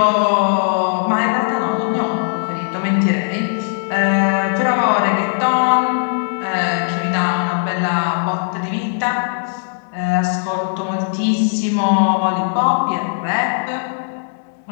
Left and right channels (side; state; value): right; silent; digital silence